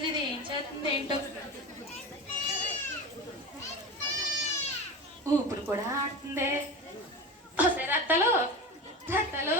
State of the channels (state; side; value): normal; both; correlation 0.27